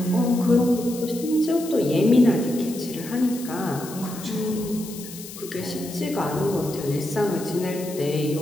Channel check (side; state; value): left; noise; hiss, 14 dB below the sound